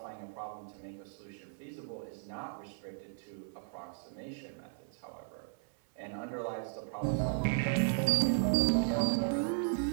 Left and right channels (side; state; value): left; silent; 54 dB below the other